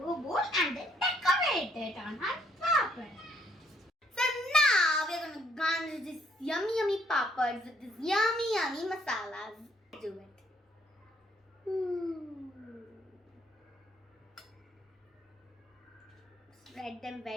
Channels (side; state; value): both; normal; correlation 0.67